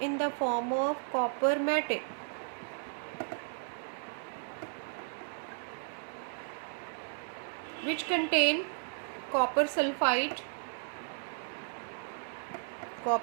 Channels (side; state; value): left; silent; 55 dB below the other